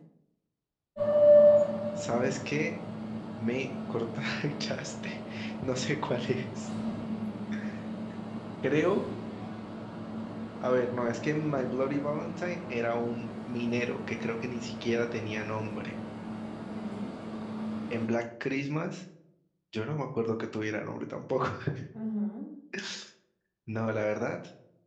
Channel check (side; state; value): both; identical; correlation 1.00